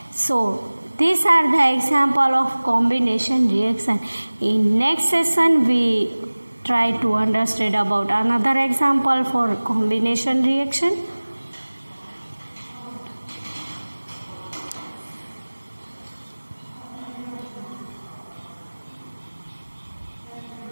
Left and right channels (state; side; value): inverted; both; correlation -1.00